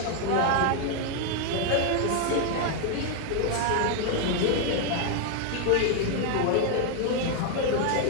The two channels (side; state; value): both; different; correlation 0.00